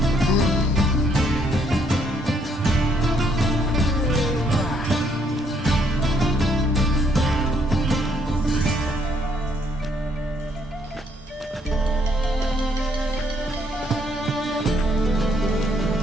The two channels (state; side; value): normal; both; correlation 0.70